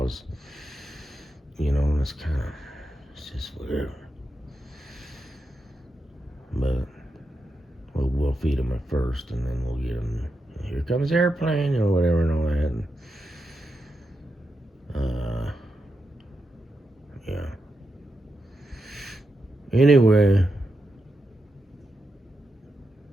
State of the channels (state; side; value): normal; both; correlation 0.87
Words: And it's just whatever. But we'll feed them at first, and then we'll get them. Here comes airplane, or whatever, and all that. And, yeah. Anyway.